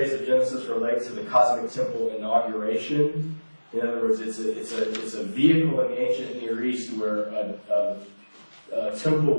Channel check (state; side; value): inverted; both; correlation -1.00